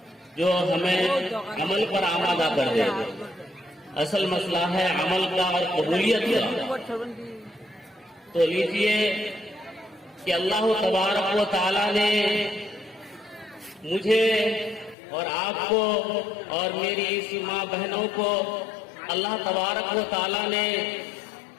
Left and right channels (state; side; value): drops out; right; at 15.0 s